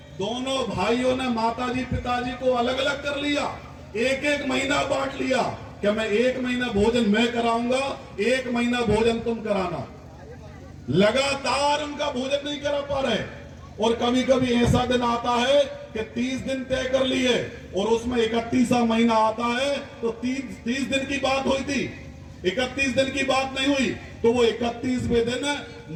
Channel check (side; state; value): both; identical; correlation 1.00